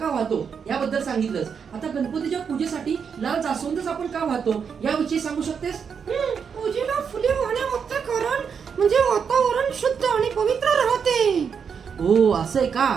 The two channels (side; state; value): left; quieter; 6.6 dB